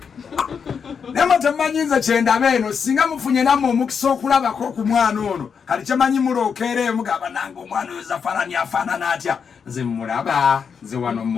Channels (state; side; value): quieter; right; 6.4 dB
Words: nema temanyiza kyendaba eno singa mufunye nammwe omukisa okulabako ku mwana ono kati kyemanyi mulookeera mugamba nange omwana oyo zafarani afaanana atya nze mulaba nze wano